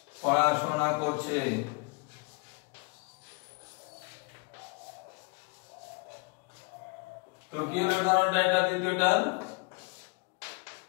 পড়াশোনা করছে। তো কি হলো উদাহরণটা, এটা দ্বিতীয়টা,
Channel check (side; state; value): right; quieter; 30.6 dB